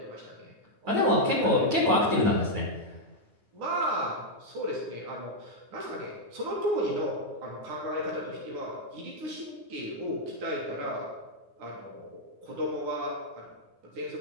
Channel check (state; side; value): late; left; 9.5 ms